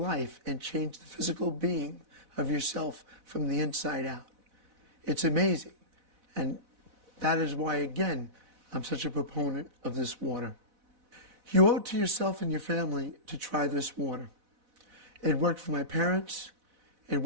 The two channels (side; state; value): left; late; 4.0 ms